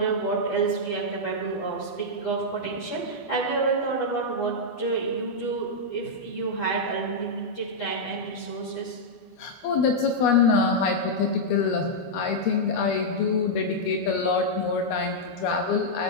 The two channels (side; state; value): right; late; 12 ms